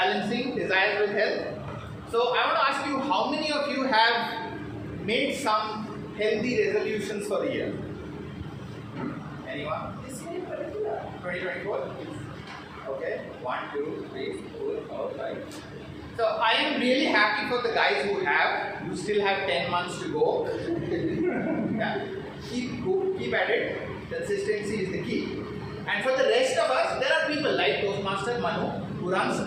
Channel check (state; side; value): identical; both; correlation 1.00